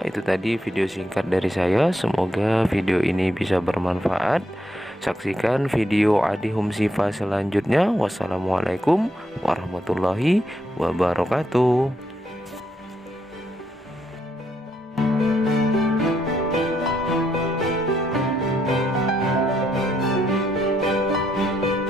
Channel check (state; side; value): normal; both; correlation 0.77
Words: itu tadi video singkat dari saya. Semoga video ini bisa bermanfaat. Saksikan video Adi Hum Sifa selanjutnya. Wassalamualaikum warahmatullahi wabarakatuh.